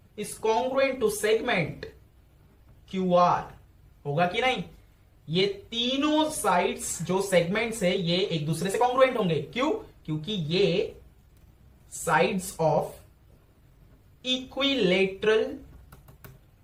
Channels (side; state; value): both; identical; correlation 1.00